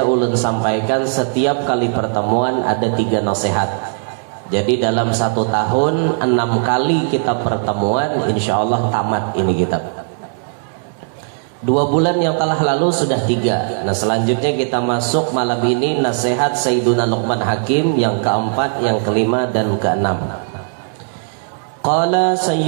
ulun sampaikan setiap kali pertemuan ada 3 nasihat. Jadi dalam 1 tahun 6 kali kita pertemuan, insya Allah tamat ini kitab. 2 bulan yang telah lalu sudah 3. Nah selanjutnya kita masuk malam ini nasihat Sayyiduna Luqman Hakim yang keempat, yang kelima dan keenam. Qala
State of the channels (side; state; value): left; silent; digital silence